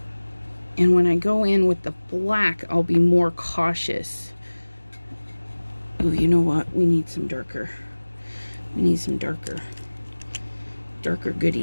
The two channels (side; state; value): both; inverted; correlation -1.00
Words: And when I go in with the black, I'll be more cautious. Oh, you know what? We need some darker. We need some darker